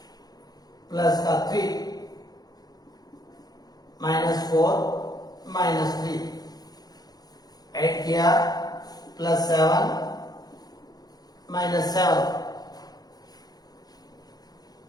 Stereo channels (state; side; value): late; right; 0.19 ms